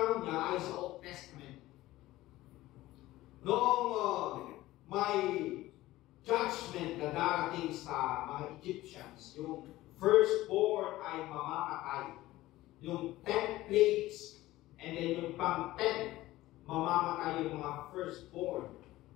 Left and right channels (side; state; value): right; quieter; 16.9 dB